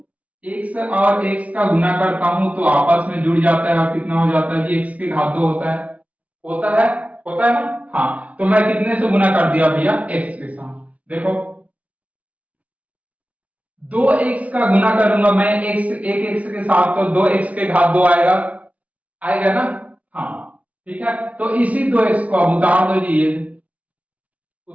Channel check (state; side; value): late; left; 0.068 ms